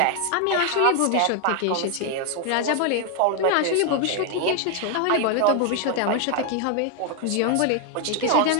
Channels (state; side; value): different; both; correlation 0.00